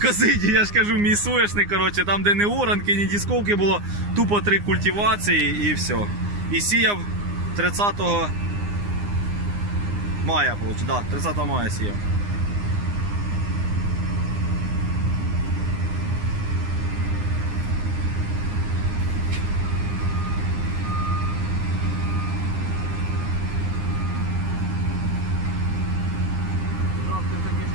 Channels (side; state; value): left; late; 9.7 ms